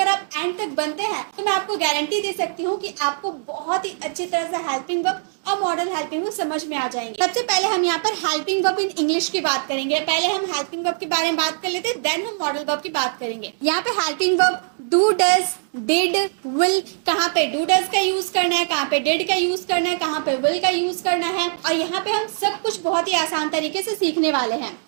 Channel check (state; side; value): silent; left; digital silence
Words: आप एंड तक बनते हैं तो मैं आपको गारंटी दे सकती हूँ कि आपको बहुत ही अच्छी तरह से हेल्पिंग वर्ब और मॉडल हेल्पिंग वर्ब समझ में आ जाएंगे। सबसे पहले हम यहाँ पर हेल्पिंग वर्ब इन इंग्लिश की बात करेंगे। पहले हम हेल्पिंग वर्ब के बारे में बात कर लेते हैं, देन हम मॉडल वर्ब की बात करेंगे। यहाँ पे helping verb do, does, did, will, कहाँ पे डू डज का यूज करना है, कहाँ पे डिड का यूज करना है, कहाँ पे विल का यूज करना है, और यहाँ पे हम सब कुछ बहुत ही आसान तरीके से सीखने वाले हैं।